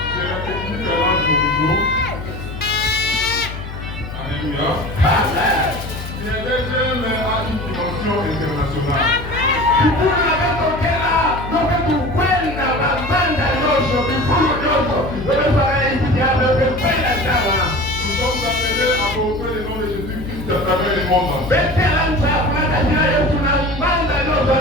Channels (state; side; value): noise; left; hum, 10 dB below the sound